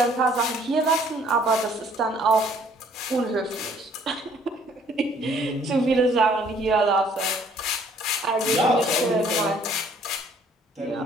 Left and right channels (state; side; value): normal; both; correlation 0.60